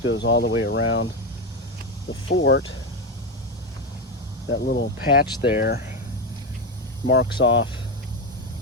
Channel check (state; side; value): normal; both; correlation 0.12